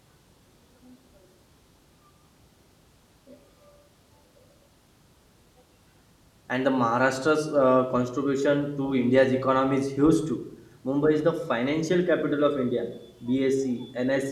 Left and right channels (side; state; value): both; identical; correlation 1.00